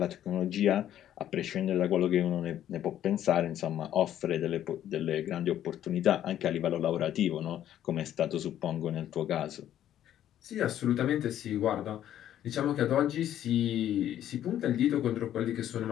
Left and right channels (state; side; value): quieter; right; 11.4 dB